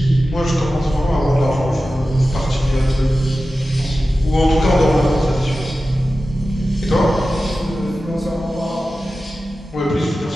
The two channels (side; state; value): both; normal; correlation 0.94